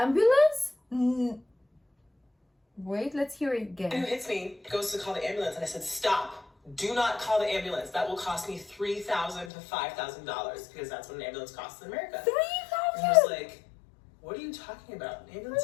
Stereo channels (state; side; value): drops out; right; at 9.5 s